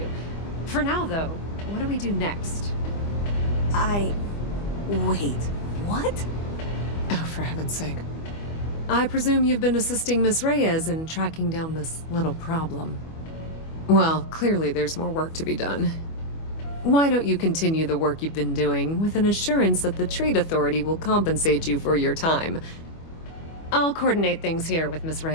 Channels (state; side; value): late; right; 25 ms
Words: For now, though, what do we do next? Wait, what? Oh, for heaven's sake. I presume you've been assisting Miss Reyes in tracking down this little problem. Well, clearly there's more work to be done. Why don't you continue the work you've been doing with an assurance that the Trade Authority will compensate you for your time? I'll coordinate things here with Miss